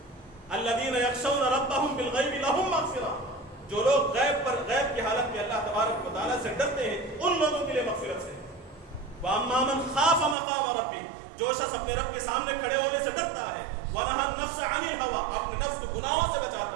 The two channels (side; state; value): left; drops out; at 10.4 s